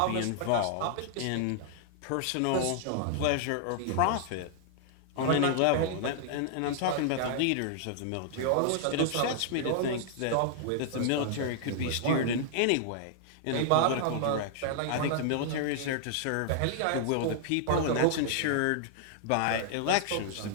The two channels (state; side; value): different; both; correlation -0.01